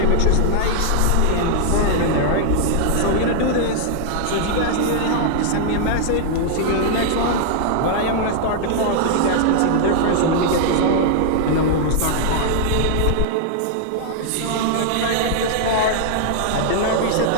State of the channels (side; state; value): both; different; correlation -0.01